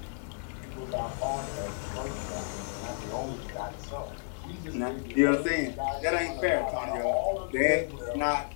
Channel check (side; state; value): right; silent; digital silence